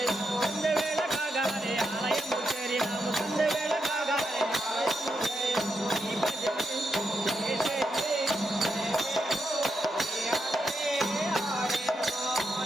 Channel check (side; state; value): both; normal; correlation 0.84